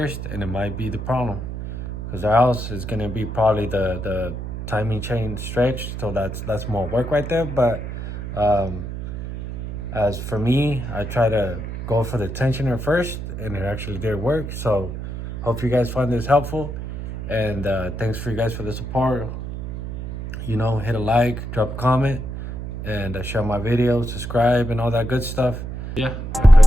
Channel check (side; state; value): right; noise; hum, 7 dB below the sound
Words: and it might be the problem, because else it's gonna be probably the timing chain stretched. So that's more work right there. But as for me, I try to go for the tensioner first, and it actually did work. So hope you guys find this helpful, and thanks for you guys for the support. You know, hit a like, drop a comment, and share my videos, subscribe, and all that good stuff. Yeah, I'll